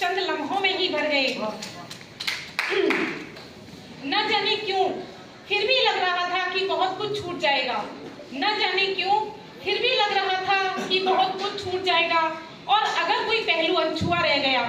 लम्हों में ही भर गए। न जाने क्यों फिर भी लग रहा था कि बहुत कुछ छूट जाएगा, न जाने क्यों फिर भी लग रहा था कि बहुत कुछ छूट जाएगा। और अगर कोई पहलू अनछुआ रह गया,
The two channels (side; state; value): both; identical; correlation 1.00